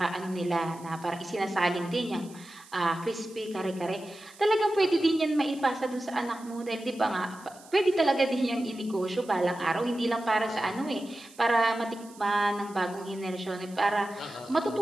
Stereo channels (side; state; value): right; noise; hiss, 22 dB below the sound